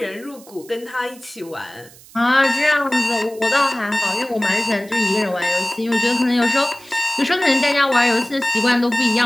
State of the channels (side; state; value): right; noise; hiss, 22 dB below the sound